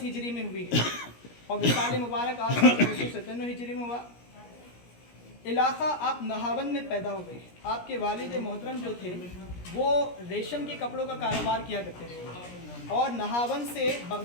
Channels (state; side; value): late; right; 17 ms